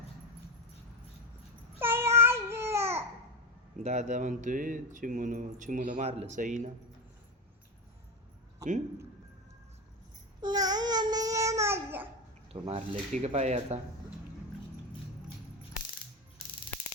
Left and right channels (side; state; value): both; normal; correlation 0.16